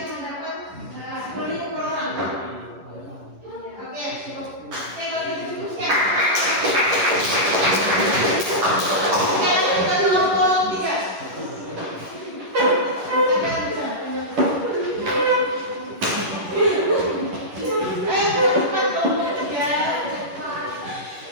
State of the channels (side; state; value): left; late; 11 ms